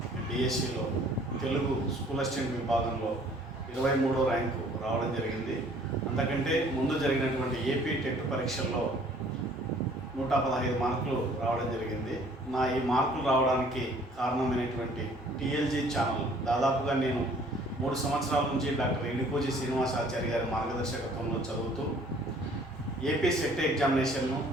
డిఎస్సిలో తెలుగు స్కూల్ అసిస్టెంట్ విభాగంలో 23వ ర్యాంకు రావడం జరిగింది. అంతకంటే ముందు జరిగినటువంటి ఏపీ టెట్ పరీక్షల్లో 115 మార్కులు రావడం జరిగింది. నా ఈ మార్కులు రావడానికి కారణమైనటువంటి టీఎల్జీ ఛానల్ దాదాపుగా నేను 3 సంవత్సరాల నుంచి డాక్టర్ ఎడికోజీ శ్రీనివాసాచారి గారి మార్గదర్శకత్వంలో చదువుతూ ఏపీ సెట్ ఎగ్జామినేషన్ను,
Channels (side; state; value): both; normal; correlation 0.56